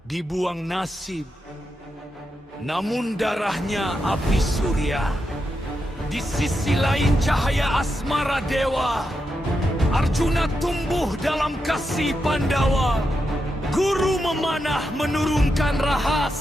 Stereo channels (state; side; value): normal; both; correlation 0.86